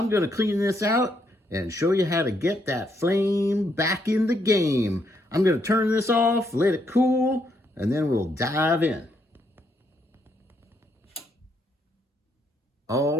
gonna clean this out and show you how to get that flame back in the game. I'm gonna turn this off, let it cool, and then we'll dive in.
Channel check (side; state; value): both; normal; correlation 0.75